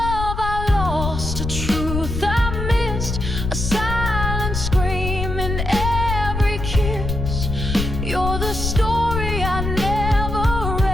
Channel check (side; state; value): left; noise; rumble, 4 dB below the sound